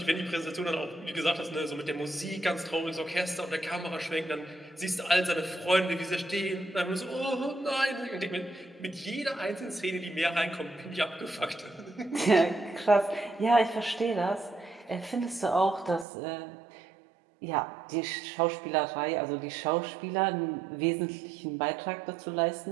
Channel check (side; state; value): left; drops out; at 16.1 s